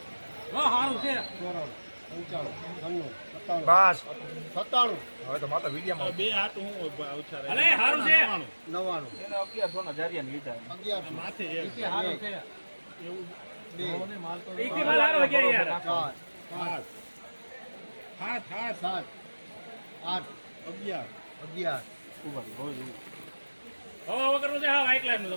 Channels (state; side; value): inverted; both; correlation -1.00